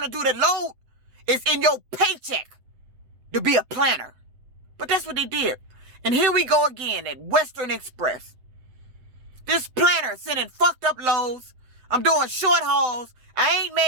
to do the load is in your paycheck to be a planner. But that's what they did. And here we go again at Western Express. This planner sending fucked up loads. I'm doing short hauls. I ain't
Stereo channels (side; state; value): left; late; 7.9 ms